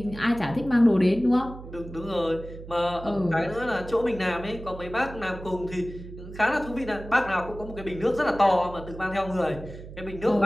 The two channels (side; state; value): right; noise; hum, 13 dB below the sound